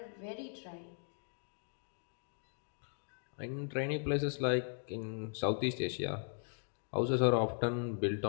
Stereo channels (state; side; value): silent; right; 52 dB below the other